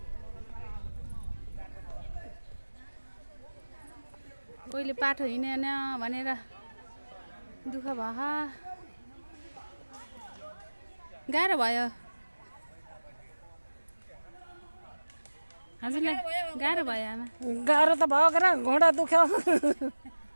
कोहीले बाटो हिँडेन भनेर दुःख भयो गाह्रो भयो हजुरलाई गाह्रो भयो आमा गाह्रो त भयो के घोडा दुख्यो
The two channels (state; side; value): inverted; both; correlation -1.00